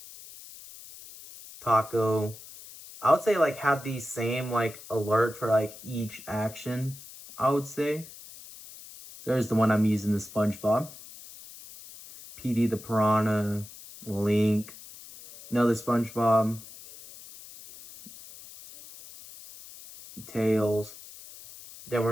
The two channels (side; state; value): left; noise; hiss, 17 dB below the sound